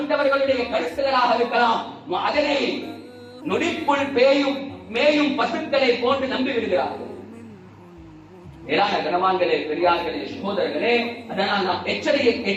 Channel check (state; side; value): identical; both; correlation 1.00